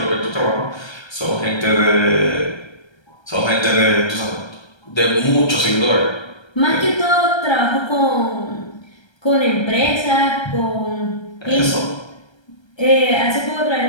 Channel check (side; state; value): right; late; 1.3 ms